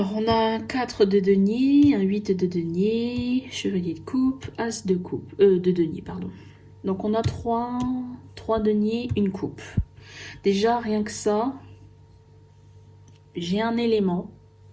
on a un 4 de denier, un 8 de denier, chevalier de coupe, as de coupe, de denier, pardon. Donc, on a 3 deniers, une coupe. Déjà, rien que ça, j'ai un élément.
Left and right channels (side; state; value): both; identical; correlation 1.00